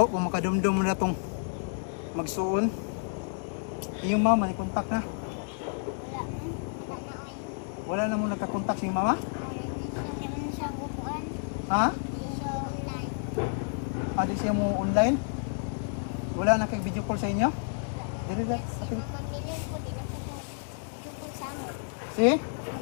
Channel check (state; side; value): silent; right; 58 dB below the other